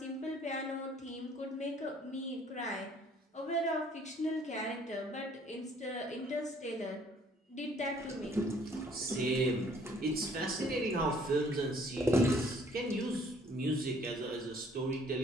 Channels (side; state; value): both; normal; correlation 0.59